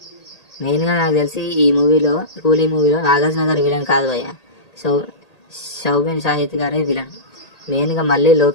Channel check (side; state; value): right; late; 1.8 ms